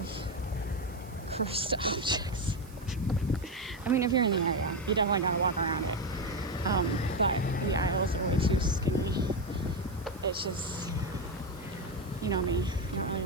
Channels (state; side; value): noise; right; hiss, 23 dB below the sound